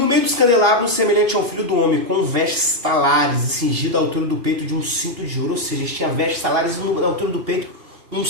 meio dos candelabros, semelhante ao filho do homem, com vestes talares e cingido à altura do peito de um cinto de ouro. Ou seja, ele tinha vestes talares e à altura do peito um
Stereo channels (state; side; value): late; left; 2.8 ms